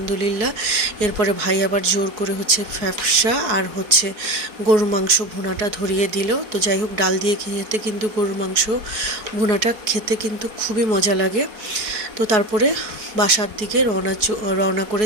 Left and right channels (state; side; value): late; left; 4.6 ms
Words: এরপরে ভাই আবার জোর করে ফ্যাপসা আর গরুর মাংস ভুনাটা ধরিয়ে দিল। তো যাই হোক, ডাল দিয়ে খেতে কিন্তু গরুর মাংস ভুনাটা খেতে কিন্তু খুবই মজা লাগে। তো তারপরে বাসার দিকে রওনা